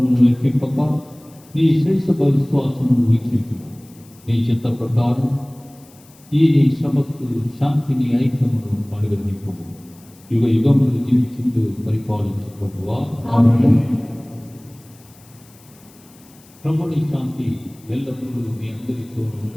లెక్కింపక నీ శ్రేష్ఠ విశ్వాసమును వీక్షించు. నీ చిత్త ప్రకారం ఈ నీ శ్రమకు శాంతిని ఐక్యమును అనుగ్రహింపు. యుగ యుగములు జీవించుతూ పరిపాలించు ప్రభువా. ప్రభుని శాంతి ఎల్లప్పుడూ మీ అందరితో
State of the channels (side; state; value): left; noise; hiss, 27 dB below the sound